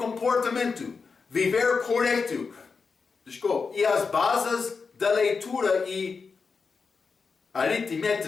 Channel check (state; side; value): quieter; right; 5.0 dB